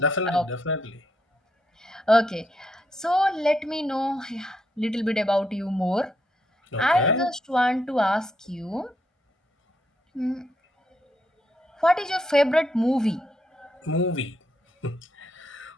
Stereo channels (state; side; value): normal; both; correlation 0.78